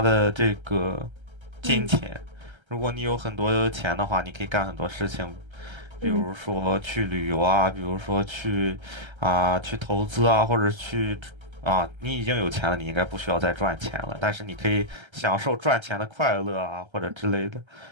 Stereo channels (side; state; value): left; late; 1.3 ms